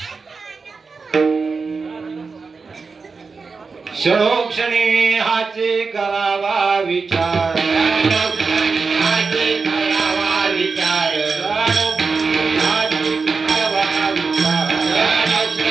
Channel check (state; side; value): quieter; left; 4.6 dB